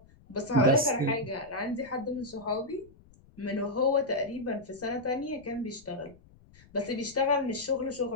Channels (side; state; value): left; noise; rumble, 26 dB below the sound